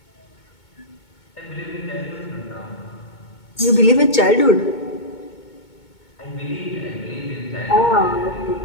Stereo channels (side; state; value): right; late; 2.2 ms